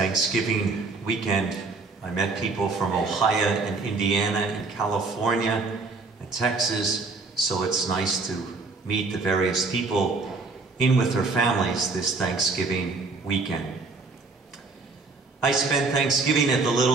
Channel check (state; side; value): quieter; left; 3.9 dB